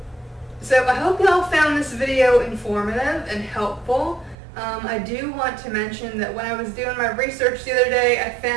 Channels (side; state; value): left; drops out; at 4.4 s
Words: So I hope y'all found this video informative and helpful. I do want to mention that when I was doing my research the other day, I